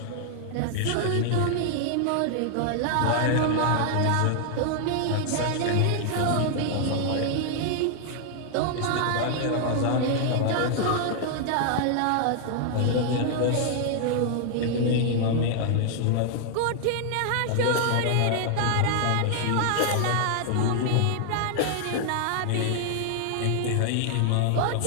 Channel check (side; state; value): both; different; correlation 0.00